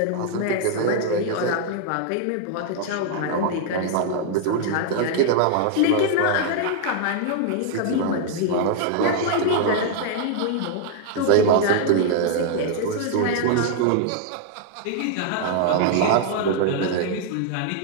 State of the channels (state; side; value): different; both; correlation 0.00